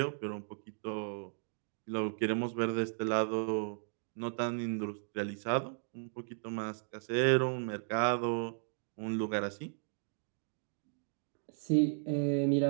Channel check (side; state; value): left; silent; digital silence